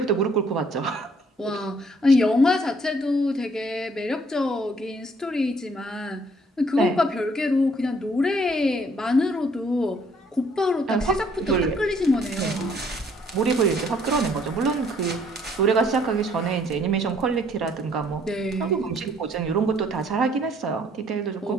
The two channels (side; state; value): both; normal; correlation 0.63